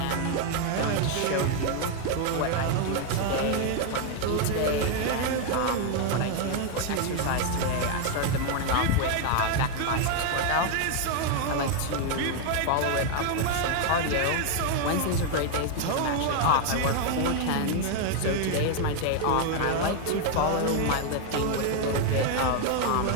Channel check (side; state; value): both; different; correlation 0.01